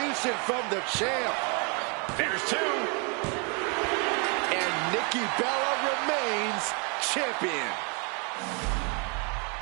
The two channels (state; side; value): quieter; left; 34.7 dB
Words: from the champ. There's two. And Nikki Bella remains champion.